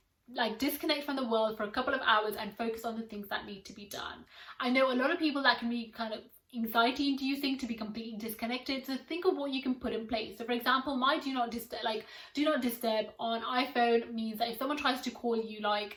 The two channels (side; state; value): both; identical; correlation 1.00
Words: like disconnect from the world for a couple of hours and focus on the things that need to be done. I know a lot of people that can be kind of anxiety inducing to be completely disconnected, so think of what you can put in place. So for example, my do not disturb on iPhone means that if someone tries to call you